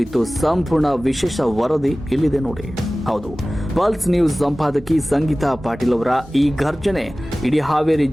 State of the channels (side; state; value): both; normal; correlation 0.97